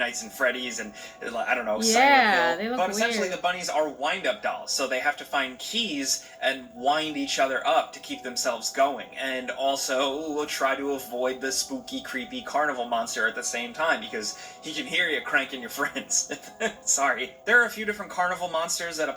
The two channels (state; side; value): identical; both; correlation 1.00